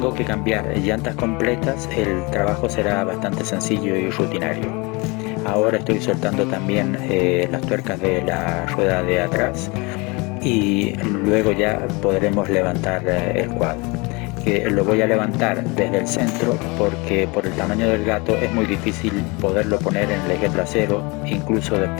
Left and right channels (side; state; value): right; quieter; 27.2 dB